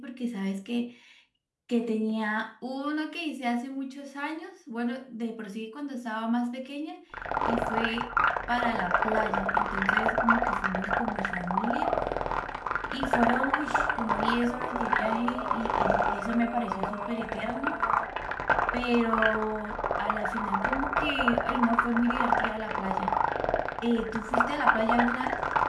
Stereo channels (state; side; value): identical; both; correlation 1.00